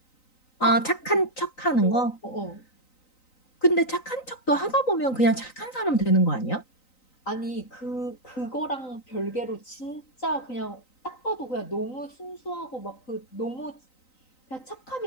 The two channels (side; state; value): right; late; 3.9 ms